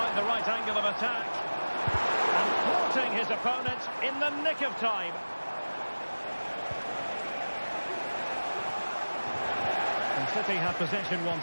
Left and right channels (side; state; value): both; inverted; correlation -1.00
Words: the right angle of attack. And thwarting his opponent in the nick of time. And City have possession